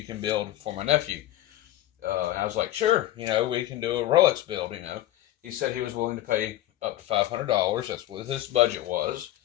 can build for my nephew? And I was like, sure, we can do a Rolex build. He said he was willing to pay up to $500. That's what his budget was.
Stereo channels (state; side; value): quieter; right; 14.1 dB